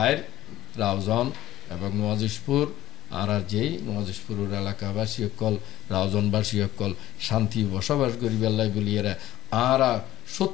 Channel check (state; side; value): quieter; right; 14.7 dB